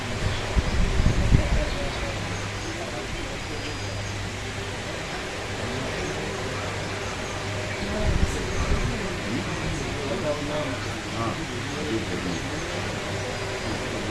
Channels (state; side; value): identical; both; correlation 1.00